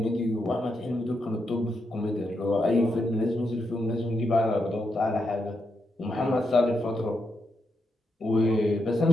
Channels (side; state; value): both; normal; correlation 0.83